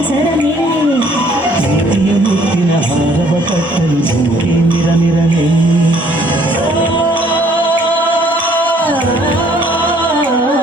ಪ್ರೀತಿಯ ಮುತ್ತಿನ ಹಾರವ ಕಟ್ಟಲು ಧುಮುಕಿ ಮಿರಮಿರನೆ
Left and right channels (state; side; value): normal; both; correlation 0.62